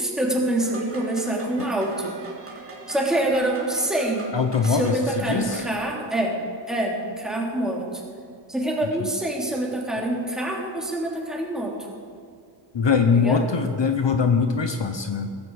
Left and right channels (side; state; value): both; normal; correlation 0.36